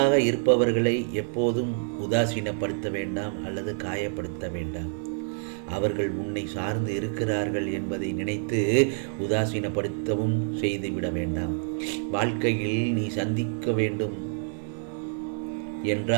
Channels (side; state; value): left; silent; digital silence